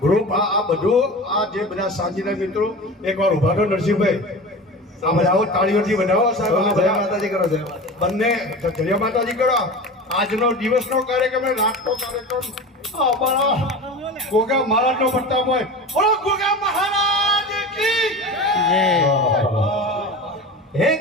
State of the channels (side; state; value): both; normal; correlation 0.32